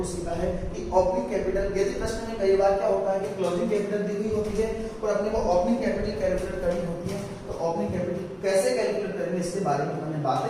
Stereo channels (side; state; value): both; identical; correlation 1.00